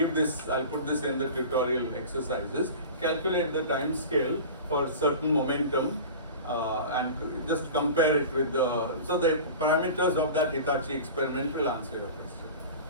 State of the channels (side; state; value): both; inverted; correlation -0.35